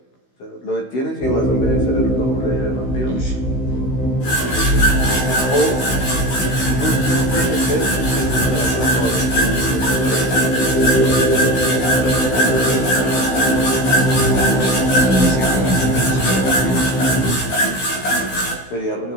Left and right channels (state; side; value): late; right; 16 ms